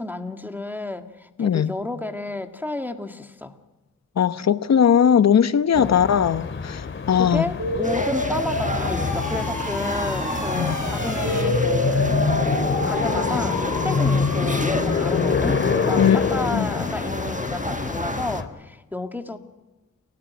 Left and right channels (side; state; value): right; quieter; 4.9 dB